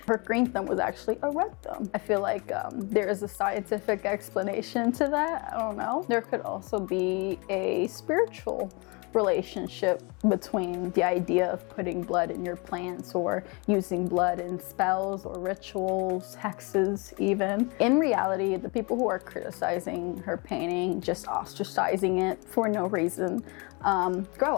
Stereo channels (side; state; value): right; quieter; 29.8 dB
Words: her green thumb was actually a red thumb. I feel like there is a scientific explanation to that. I don't know. There could also be a spiritual relationship between the idea of putting blood in your plants or using blood in spells or rituals, hexes even. In reality, the people who are criticizing her painting, just ostracizing it for no reason, grow